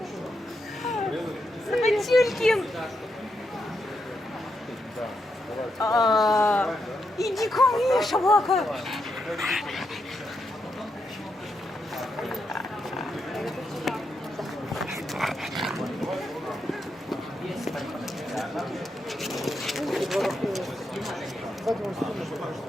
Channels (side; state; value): both; normal; correlation 0.83